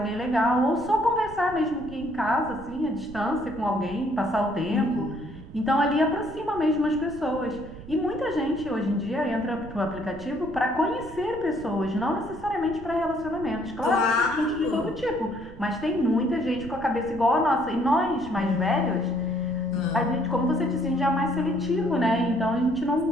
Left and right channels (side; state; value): right; noise; rumble, 15 dB below the sound